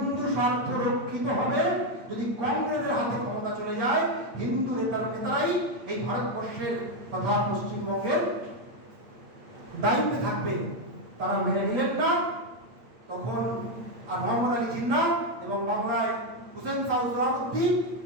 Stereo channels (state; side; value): late; left; 8.6 ms